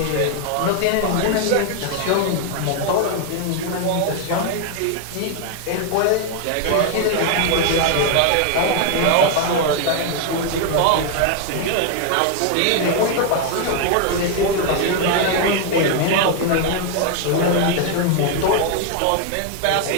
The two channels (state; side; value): different; both; correlation 0.01